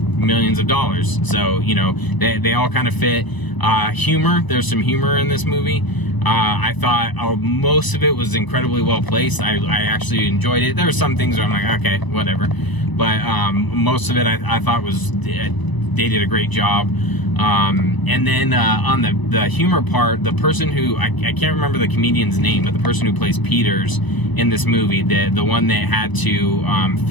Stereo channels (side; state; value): right; late; 1.0 ms